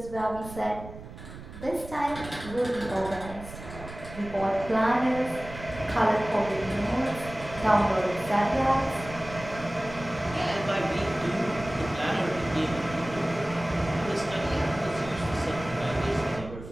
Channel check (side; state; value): right; noise; rumble, 13 dB below the sound